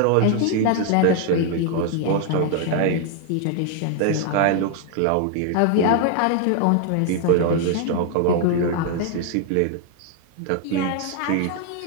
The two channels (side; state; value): both; different; correlation 0.00